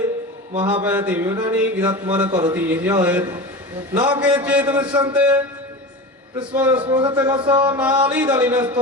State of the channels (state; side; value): normal; both; correlation 0.28